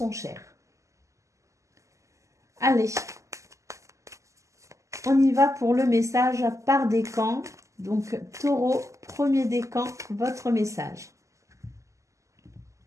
chères. Allez, on y va pour le message par décan. Donc, Taureau, premier décan, votre message.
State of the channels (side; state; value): left; late; 0.15 ms